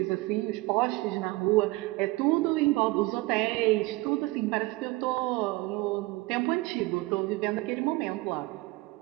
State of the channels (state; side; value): quieter; left; 21.5 dB